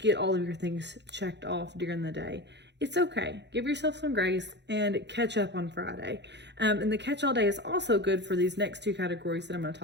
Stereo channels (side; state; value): left; late; 0.50 ms